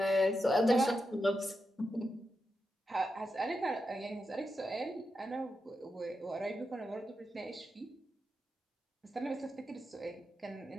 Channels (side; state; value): both; normal; correlation 0.87